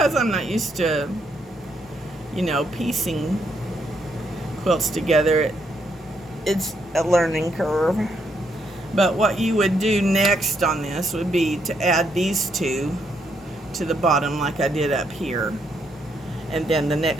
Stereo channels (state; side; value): normal; both; correlation 0.75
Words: I'm not used to, you know, piecing quilts together. It's a learning curve. But what you would do next on this would be to add these two to the bottom like I did up here. And then the